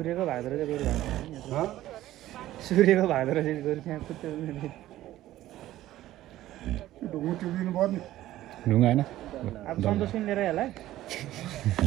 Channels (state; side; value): quieter; left; 14.6 dB